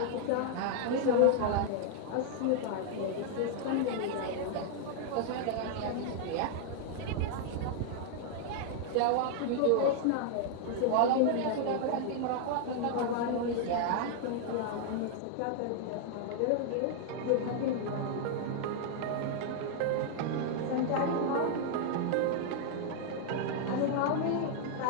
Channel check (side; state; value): both; different; correlation 0.00